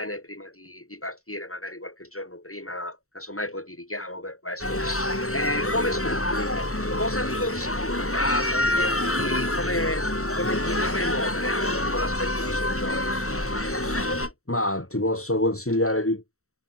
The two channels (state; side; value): late; right; 0.64 ms